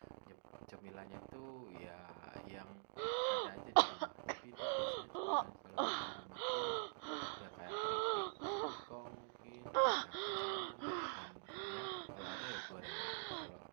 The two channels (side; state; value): left; silent; digital silence